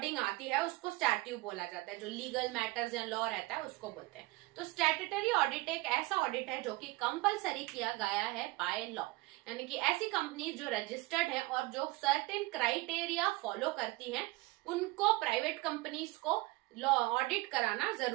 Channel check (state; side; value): quieter; left; 21.6 dB